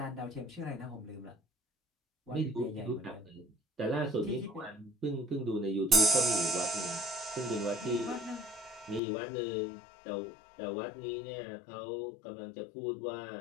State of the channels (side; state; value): right; drops out; at 9.0 s